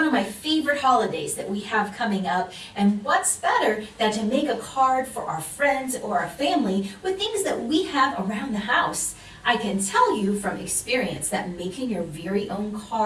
of my favorite holidays that we have coming up, and what's better than to make a card for our friends or our family with things that we have around the house. I can tell you from experience that making your very own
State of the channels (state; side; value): identical; both; correlation 1.00